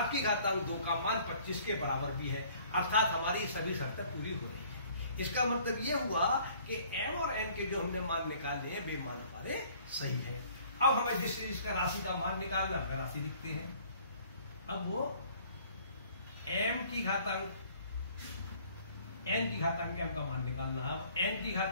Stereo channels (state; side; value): inverted; both; correlation -0.56